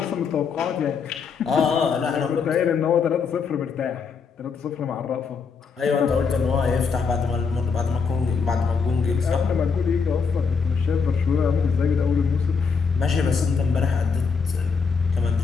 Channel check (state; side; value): quieter; right; 5.5 dB